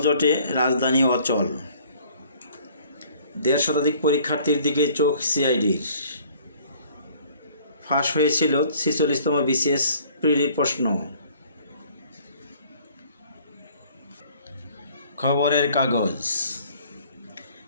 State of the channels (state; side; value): inverted; both; correlation -0.56